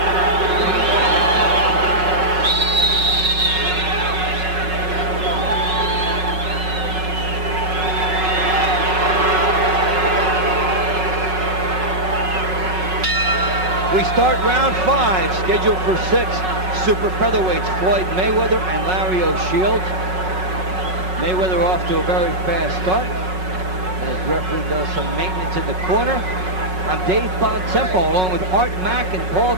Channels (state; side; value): late; left; 5.4 ms